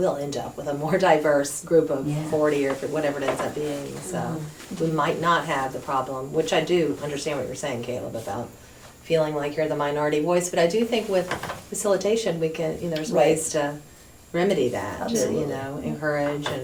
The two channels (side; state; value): both; identical; correlation 1.00